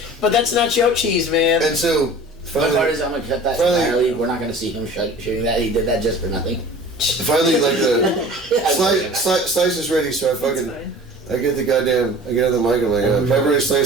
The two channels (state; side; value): normal; both; correlation 0.42